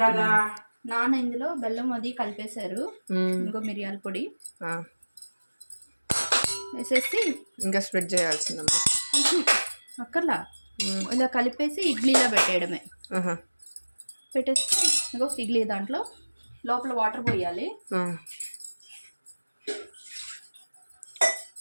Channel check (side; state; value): both; inverted; correlation -1.00